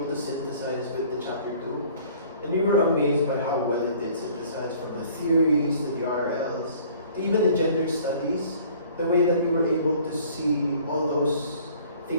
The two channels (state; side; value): inverted; both; correlation -0.53